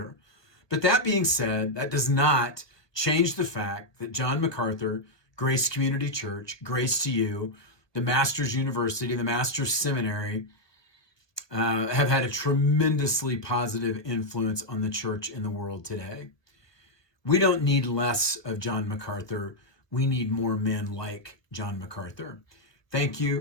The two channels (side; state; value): right; late; 1.2 ms